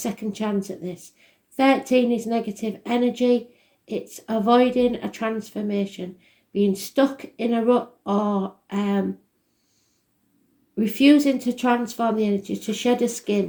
chance at this. 13 is negative energy. It's avoiding a transformation, being stuck in a rut, or refusing to transform the energy, to shed a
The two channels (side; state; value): both; identical; correlation 1.00